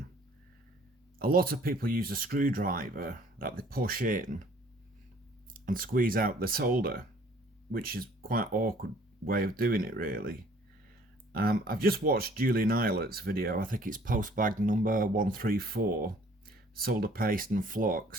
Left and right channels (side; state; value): both; normal; correlation 0.57